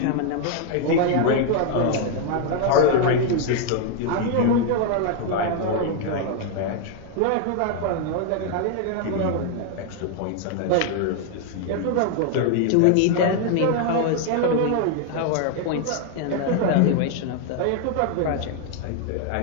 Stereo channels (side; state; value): both; different; correlation 0.00